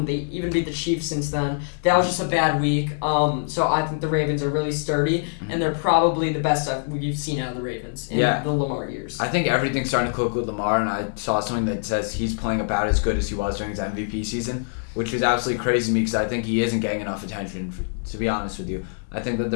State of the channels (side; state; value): right; silent; digital silence